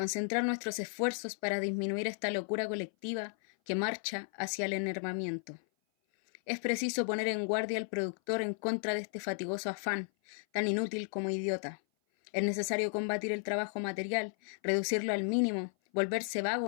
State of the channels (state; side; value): silent; right; 55 dB below the other